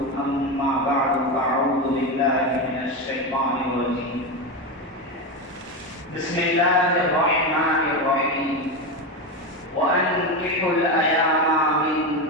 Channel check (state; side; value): normal; both; correlation 0.15